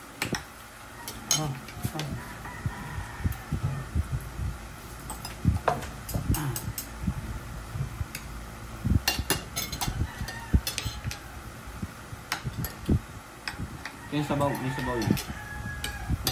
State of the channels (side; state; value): both; identical; correlation 1.00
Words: Yung sabaw, may sabaw yun.